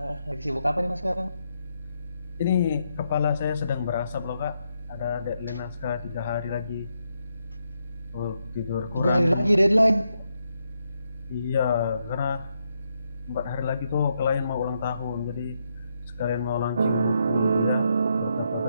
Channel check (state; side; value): inverted; both; correlation -0.80